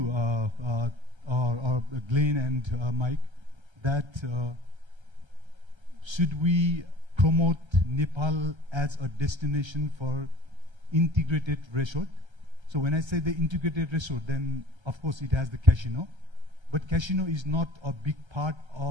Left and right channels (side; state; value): left; late; 1.3 ms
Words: or Glenn and Mike, that should we promote Nepal as a destination for integrated resort? So when I say the integrated resort, then of course it has the casino, but casino is not a big part